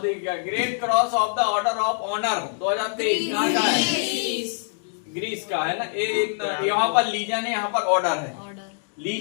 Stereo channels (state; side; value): silent; right; digital silence